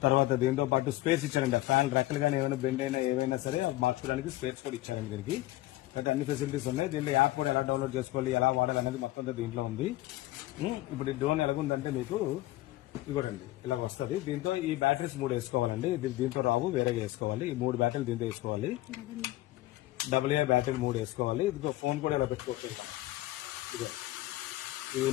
తర్వాత దీంతో పాటు స్పేస్ ఇచ్చారండి. ఫ్యాన్ రెక్కలు కానీ ఏమైనా బెండ్ అయినా ఏవైనా సరే మార్చుకోవడానికి స్పేస్ కూడా ఇచ్చారండి దీనికి. అయితే అన్ని ఫెసిలిటీస్ ఉన్నాయి. దీంట్లో యాప్ కూడా ఎలా డౌన్లోడ్ చేసుకోవాలి, ఎలా వాడాలి అనేది మొత్తం దీంట్లో ఉంది. ఇప్పుడు ఈ డ్రోన్ ఎలాగుందంటే మీకు ఇవ్వడండి ఇలా వస్తుంది. దీంతో ఈ బ్యాటరీస్ 3 వేసుకోవాలండి. దీంతో రావు, వేరేగా వేసుకోవాలి. ఈ 3 బ్యాటరీలు దీంతో వేసుకోవాలి. డబుల్ ఏ బ్యాటరీ 3 వేసుకోవాలి. ఇదిగో ఫోన్ కూడా ఇలా పెట్టుకోవచ్చు. ఇదే ఇది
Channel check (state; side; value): quieter; right; 17.1 dB